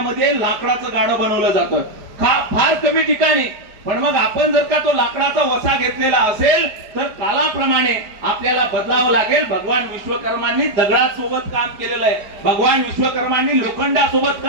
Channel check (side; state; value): left; late; 5.0 ms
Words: लाकडाचं गाडं बनवलं जातं. फार कमी ठिकाणी. पण मग आपण जर का तो लाकडाचा वसा घेतलेला असेल तर कालाप्रमाणे आपल्याला बदलावं लागेल. भगवान विश्वकर्मांनी दगडासोबत काम केलेलं आहे, भगवान विश्वकर्मांनी लोखंडासोबत